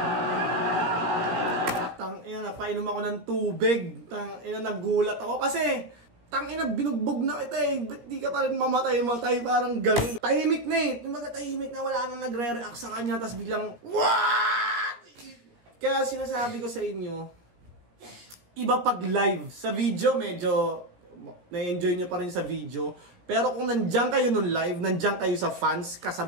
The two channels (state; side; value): late; left; 17 ms